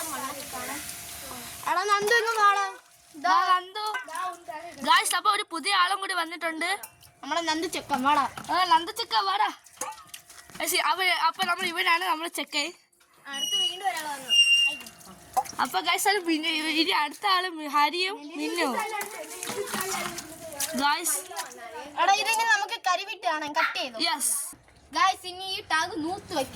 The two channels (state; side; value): identical; both; correlation 1.00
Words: എടാ നന്ദു ഇങ്ങ് വാടാ. ഗായ്സ് അപ്പോൾ ഒരു പുതിയ ആളും കൂടി വന്നിട്ടുണ്ട്. നമ്മളെ നന്ദു ചെക്കൻ വാടാ. നന്ദു ചെക്കൻ വാടാ. അപ്പോൾ നമ്മൾ ഇവനാണ് നമ്മുടെ ചെക്കൻ. അടുത്ത് വീണ്ടും ഒരാൾ വന്നു. അപ്പൊ ഗൈസ് അത് ഇനി അടുത്ത ആള് ഹരിയും നിന്നു ഗൈസ്. എടാ ഇതിന് നമുക്ക് കരിവിട്ട് കാണാം. കട്ട് ചെയ്തു. Yes guys. ഇനി ഈ ടാഗ് നൂത്ത്